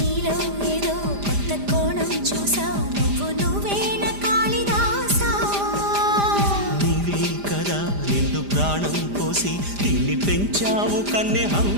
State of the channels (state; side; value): late; left; 5.0 ms